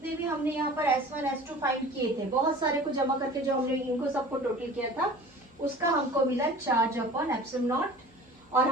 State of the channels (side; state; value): both; normal; correlation 0.42